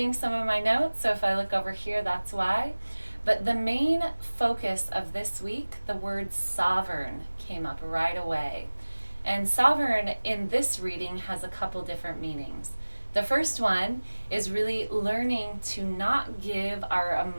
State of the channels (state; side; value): inverted; both; correlation -1.00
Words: some of my notes, so if I look over here, that's why. But the main focus of this week, the word sovereign came up right away. And sovereign in this reading has a couple different meanings. The first one is really learning to not give our